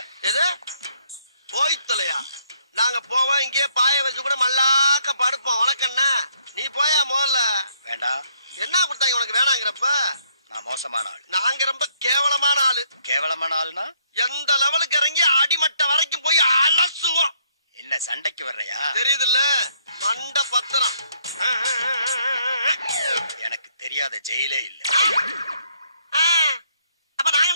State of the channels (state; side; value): inverted; both; correlation -0.69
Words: எது போய் தொலையா? நாங்க போவோம், இங்கே பாய வச்சு கூட மல்லாக்க படுப்போம். உனக்கண்ணா நீ போயா முதல்ல. வேண்டாம். என்ன கொடுத்தாங்க உனக்கு வேணாங்கிறப்ப? நான் மோசமான ஆள். நாங்க ரொம்ப கேவலமான ஆளு. கேவலமான ஆளுனா எந்த லெவலுக்கு இறங்கி அடிமட்ட வரைக்கும் போய் அலசுவோம். என்ன சண்டைக்கு வர்றையா? தெரியுதுல்ல, மண்ட பத்திரம். எனக்கு தெரியாத ஜெயிலே இல்ல. அப்ப நாங்க